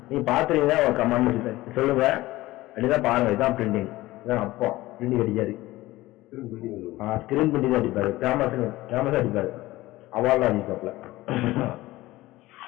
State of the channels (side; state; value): right; quieter; 18.0 dB